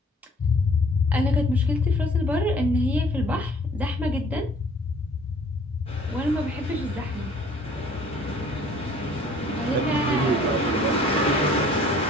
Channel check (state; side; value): normal; both; correlation 0.55